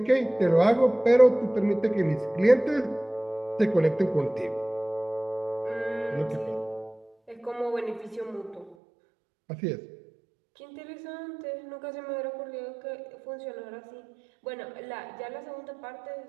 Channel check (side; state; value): left; drops out; at 8.8 s